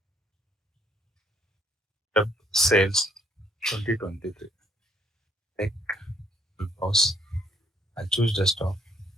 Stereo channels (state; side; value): normal; both; correlation 0.66